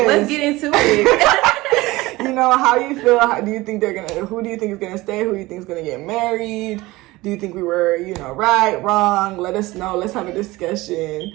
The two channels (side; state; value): left; quieter; 20.0 dB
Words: Let's get into it. How you feel? Who do you think is gonna stay? Who do you think is gonna get married? Do you think we were, right, wrong? Let us know. Let's have a